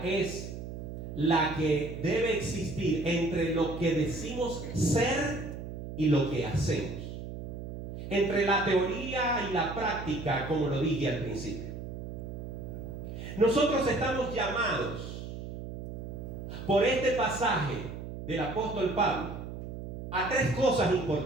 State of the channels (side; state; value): right; noise; hum, 9 dB below the sound